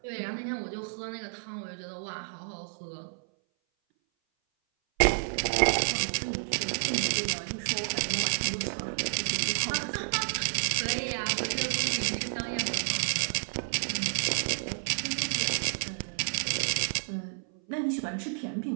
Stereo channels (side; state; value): left; silent; 58 dB below the other